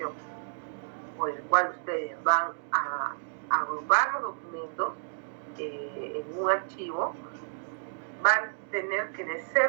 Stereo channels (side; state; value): left; silent; digital silence